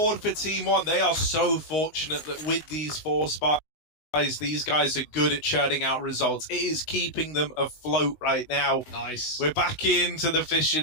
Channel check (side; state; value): right; late; 19 ms